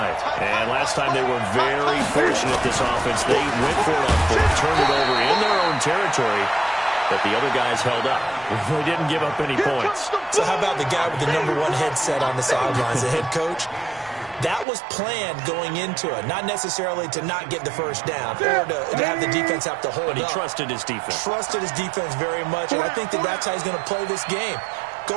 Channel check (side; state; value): left; drops out; at 14.7 s